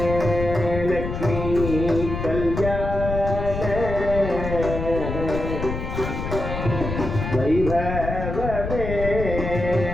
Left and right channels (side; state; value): left; noise; rumble, 5 dB below the sound